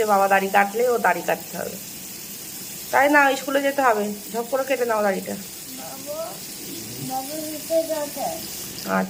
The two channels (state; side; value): identical; both; correlation 1.00